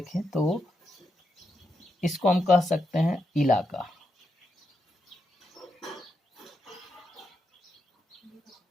तो इसको हम कह सकते हैं इलाका।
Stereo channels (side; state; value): both; normal; correlation 0.84